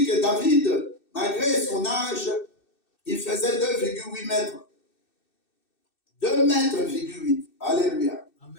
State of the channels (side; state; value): right; late; 2.6 ms